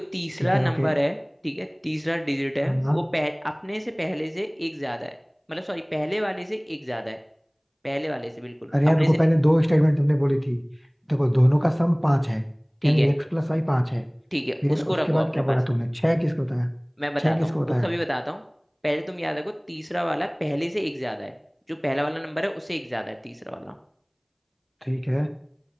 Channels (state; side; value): identical; both; correlation 1.00